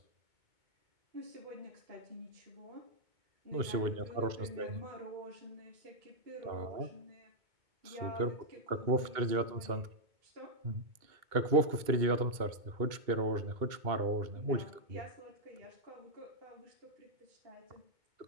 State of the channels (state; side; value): late; left; 2.2 ms